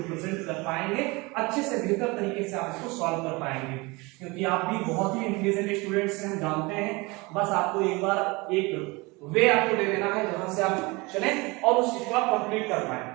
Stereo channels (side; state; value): left; quieter; 25.0 dB